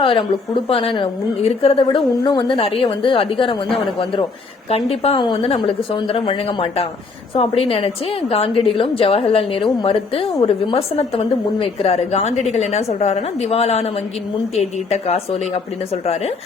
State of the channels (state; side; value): quieter; right; 4.2 dB